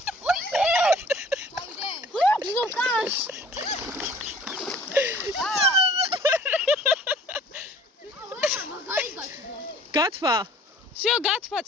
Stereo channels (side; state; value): both; normal; correlation 0.51